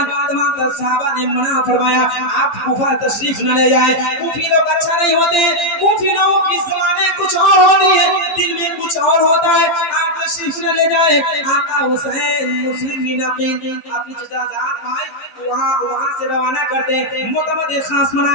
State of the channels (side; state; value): right; late; 15 ms